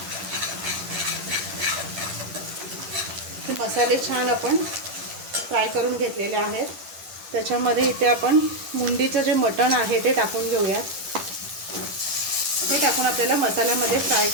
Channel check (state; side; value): late; left; 10 ms